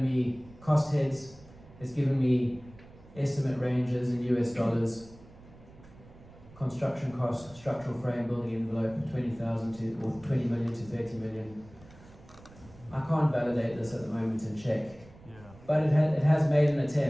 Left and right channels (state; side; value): noise; right; rumble, 22 dB below the sound